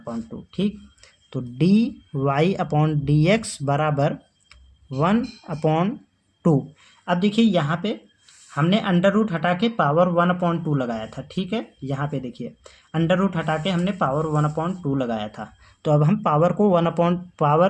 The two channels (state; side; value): identical; both; correlation 1.00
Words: ठीक, तो dy/dx बराबर 1/2। अब देखिए यहाँ पे हमने अंडर रूट हटा के पावर 1/2 लगाया था, ठीक है। यहाँ पे देखिए अंडर रूट हटा के हमने पावर 1/2 लगाया था। तो अब हम पावर को